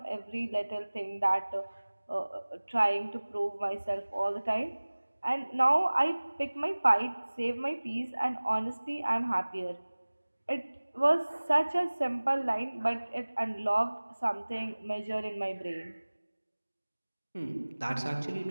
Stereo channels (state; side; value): inverted; both; correlation -1.00